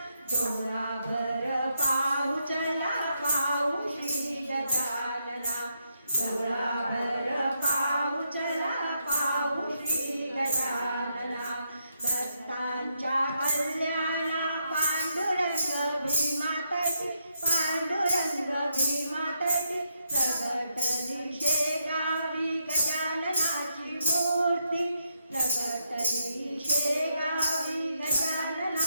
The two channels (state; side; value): inverted; both; correlation -0.80